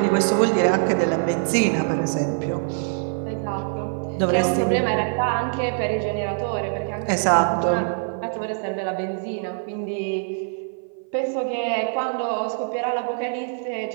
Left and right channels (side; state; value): left; silent; 57 dB below the other